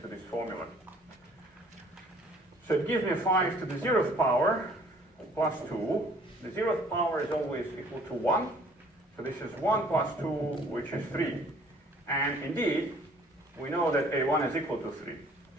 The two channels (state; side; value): normal; both; correlation 0.56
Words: this formula. So it gives me 5 to the 0th power plus 2. The 0th power is always equal to 1. So this is 1 plus 2, which is 3. And indeed, we know that A1 is equal to 3.